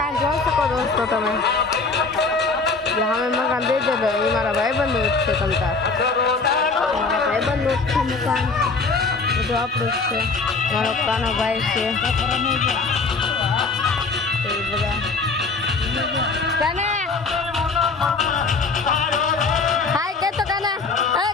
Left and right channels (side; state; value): right; quieter; 4.2 dB